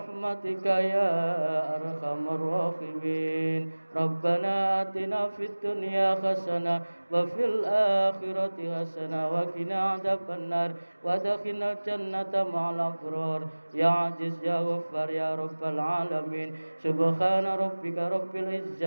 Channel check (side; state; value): both; inverted; correlation -1.00